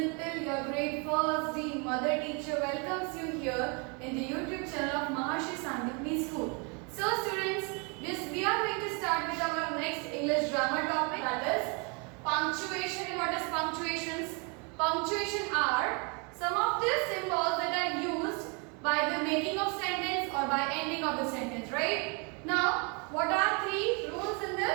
your grade 1st D mother teacher welcomes you here in the YouTube channel of Maharshi Sandipani School. So students, we are going to start with our next English grammar topic, that is punctuation. And what is punctuations? Punctuation are some of the symbols that are used by the making of sentence or by ending of the sentence, right? Now, what are three rules in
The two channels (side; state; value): left; quieter; 33.7 dB